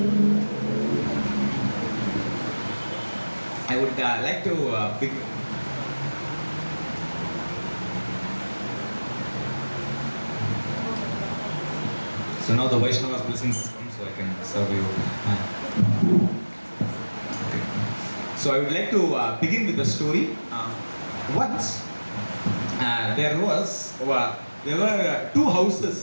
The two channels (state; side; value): inverted; both; correlation -1.00